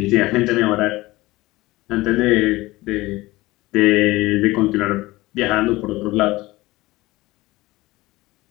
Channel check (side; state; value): right; quieter; 19.6 dB